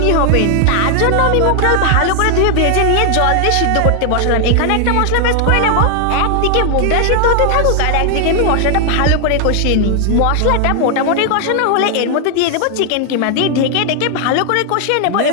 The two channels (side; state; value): both; different; correlation 0.00